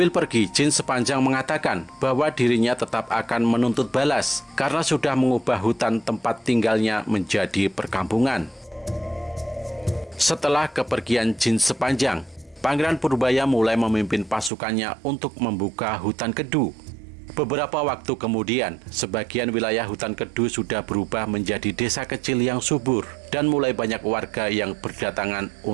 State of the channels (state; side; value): drops out; left; at 14.5 s